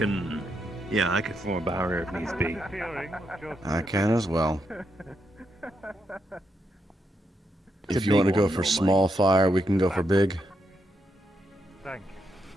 form a barrier if needs be. I can as well. If you want to go for small fire, we can go for big. Thank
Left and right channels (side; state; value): both; normal; correlation 0.81